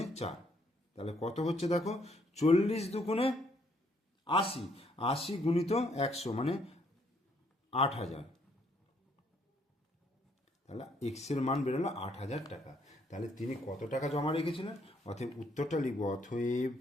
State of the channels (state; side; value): normal; both; correlation 0.69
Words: 4, তাহলে কত হচ্ছে দেখো, 40 দুগুণে 80, 80 গুণিত 100 মানে 8000। তাহলে এক্স এর মান বেরোলো 8000 টাকা। তাহলে তিনি কত টাকা জমা রেখেছিলেন, অতএব উত্তরটা লিখব, অতএব